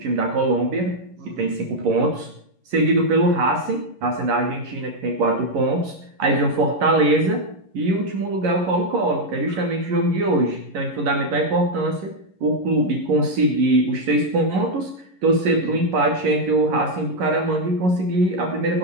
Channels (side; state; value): left; late; 11 ms